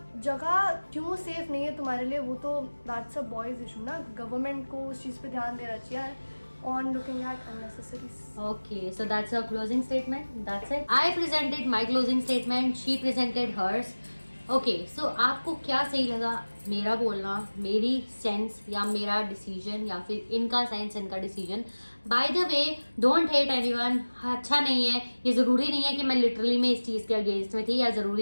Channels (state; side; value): inverted; both; correlation -1.00